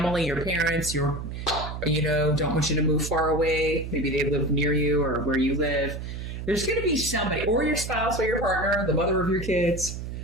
your parents, don't want you to move far away. Maybe they live near you or where you live. There's going to be somebody, or your spouse or your partner, the mother of your kids,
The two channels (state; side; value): noise; right; hum, 7 dB below the sound